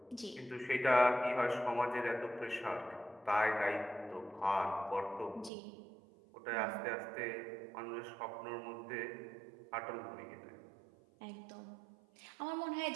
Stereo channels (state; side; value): drops out; left; at 5.5 s